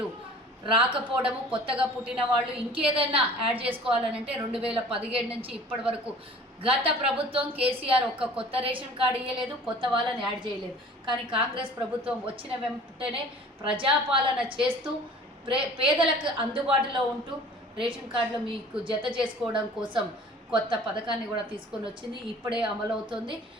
రాకపోవడము, కొత్తగా పుట్టిన వాళ్ళు ఇంకేదైనా యాడ్ చేసుకోవాలనంటే 2017 నుంచి ఇప్పటి వరకు గత ప్రభుత్వం కేసీఆర్ ఒక్క కొత్త రేషన్ కార్డు ఇవ్వలేదు, కొత్త వాళ్ళని యాడ్ చేయలేదు. కానీ కాంగ్రెస్ ప్రభుత్వం వచ్చిన వెంటనే ప్రజాపాలన చేస్తూ పేదలకు అందుబాటులో ఉంటూ రేషన్ కార్డులో మీకు జత చేసుకోవడం కోసం కొత్త పథకాన్ని కూడా తీసుకొని వచ్చింది. ఇప్పుడే అమలవుతుంది.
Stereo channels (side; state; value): both; normal; correlation 0.46